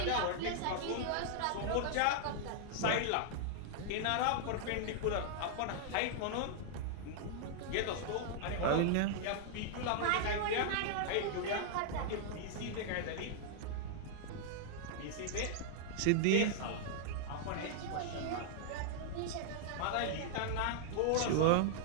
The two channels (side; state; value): both; different; correlation -0.01